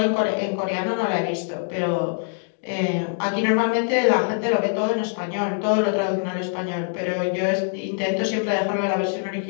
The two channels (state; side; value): silent; right; 63 dB below the other